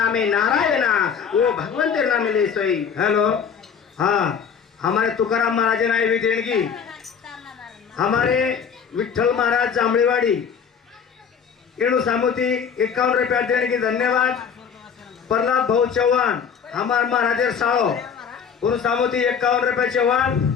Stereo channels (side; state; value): right; quieter; 6.9 dB